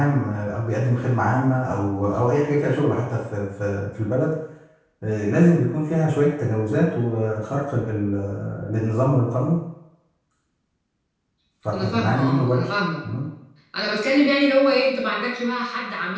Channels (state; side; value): identical; both; correlation 1.00